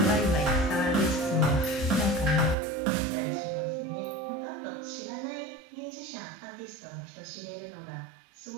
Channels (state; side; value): drops out; left; at 2.6 s